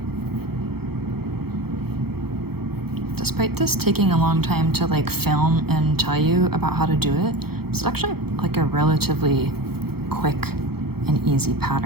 Despite this taking a long time to like film and tell you about how to do it, it's actually like a relatively quick and easy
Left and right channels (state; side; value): late; left; 0.96 ms